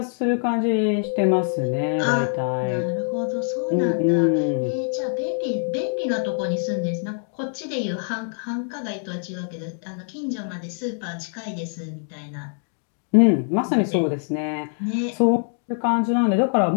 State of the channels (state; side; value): silent; right; 59 dB below the other